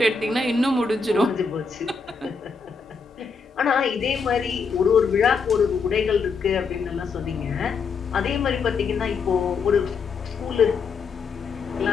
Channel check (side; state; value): right; quieter; 5.0 dB